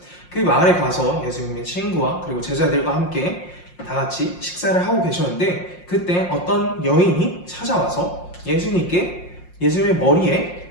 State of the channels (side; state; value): right; late; 5.6 ms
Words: 그 마을에 가서 예수님의 친구와 그리고 제자들과 함께 다 같이 식사를 하고 계셨는데 그때 어떤 여인이 찾아와서 예수님의